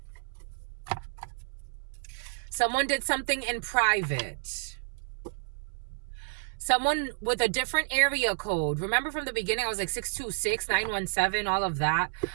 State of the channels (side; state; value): left; silent; 58 dB below the other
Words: Someone did something in private. Someone with a different area code. Remember from the beginning, I was like 626, 917, all of that.